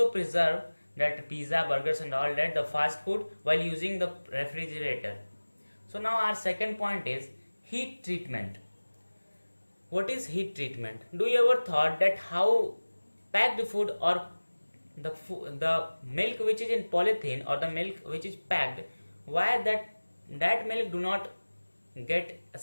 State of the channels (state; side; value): inverted; both; correlation -1.00